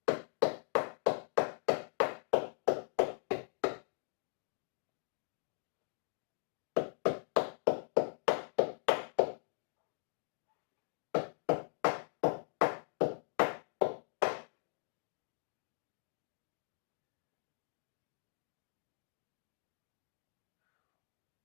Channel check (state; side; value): silent; right; digital silence